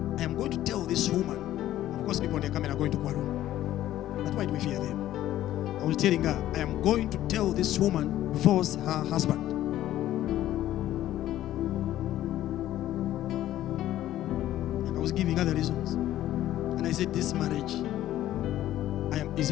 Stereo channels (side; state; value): right; quieter; 13.4 dB